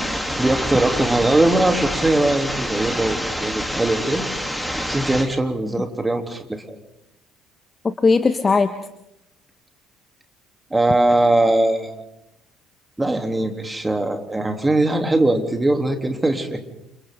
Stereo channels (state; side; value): normal; both; correlation 0.91